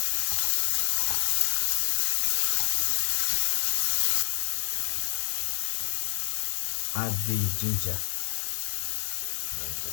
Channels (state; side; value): silent; right; 59 dB below the other